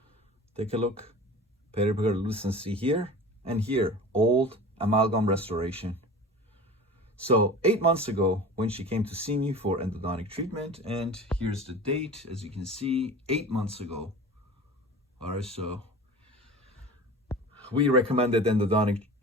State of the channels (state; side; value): normal; both; correlation 0.37